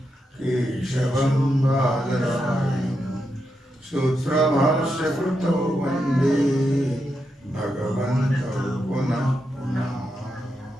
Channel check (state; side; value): normal; both; correlation 0.85